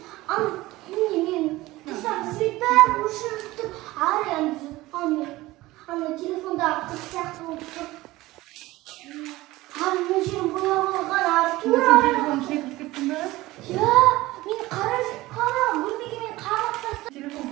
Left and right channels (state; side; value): quieter; left; 18.6 dB